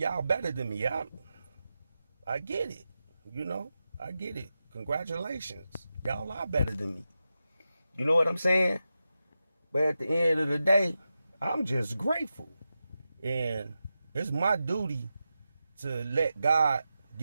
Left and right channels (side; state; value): both; inverted; correlation -0.90